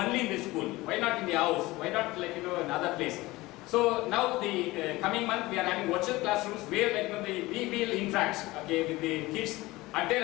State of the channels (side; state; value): right; quieter; 19.9 dB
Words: in the school? Why not in the house? Why not another place? So now the coming month we are having virtual classrooms where we will interact, okay, with the kids at their